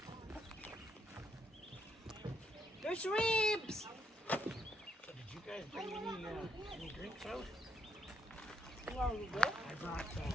There's ribs! So did you guys bring any drinks out? I brought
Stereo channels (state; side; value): normal; both; correlation 0.76